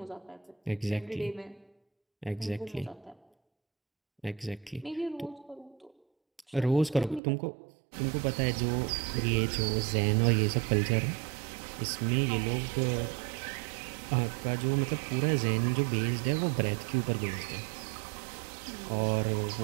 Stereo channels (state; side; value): drops out; left; at 7.2 s